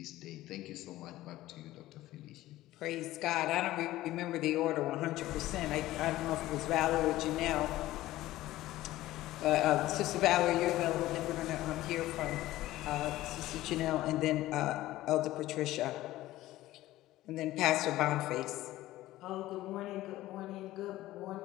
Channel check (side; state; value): right; quieter; 16.0 dB